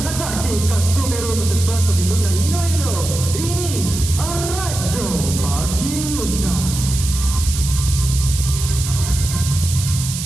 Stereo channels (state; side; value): noise; right; hiss, 7 dB below the sound